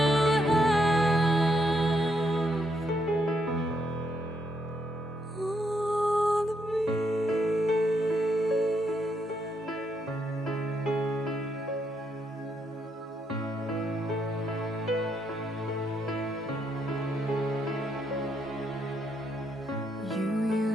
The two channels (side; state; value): both; normal; correlation 0.76